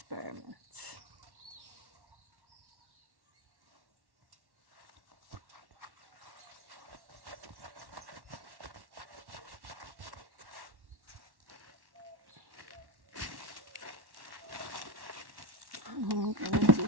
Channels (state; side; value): late; left; 1.1 ms